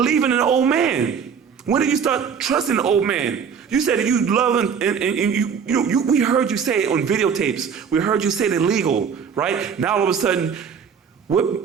in the old man? When did you start trusting the old man? You said that you love and we heard you say it on videotapes. We heard you say it illegal, right? Now all of a sudden,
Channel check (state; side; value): quieter; left; 6.8 dB